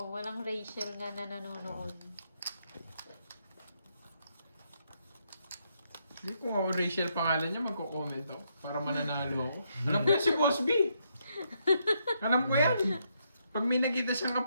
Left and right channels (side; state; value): both; inverted; correlation -0.77